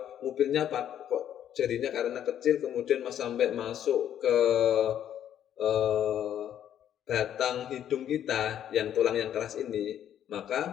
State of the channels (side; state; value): right; quieter; 10.3 dB